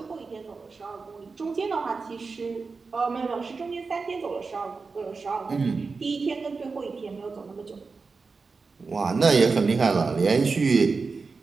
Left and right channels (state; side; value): quieter; left; 4.5 dB